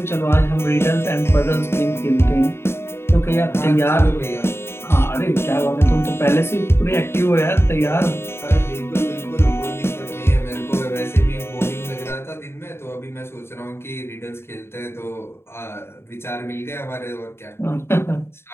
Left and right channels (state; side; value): late; right; 0.12 ms